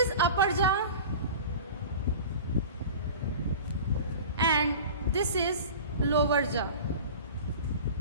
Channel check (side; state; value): both; inverted; correlation -0.37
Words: upper jaw and this is lower jaw,